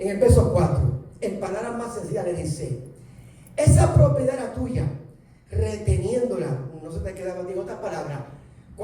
el verso 4, en palabras más sencillas le dice, esa propiedad era tuya, reteniéndola, no se te queda contigo otras palabras,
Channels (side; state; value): both; identical; correlation 1.00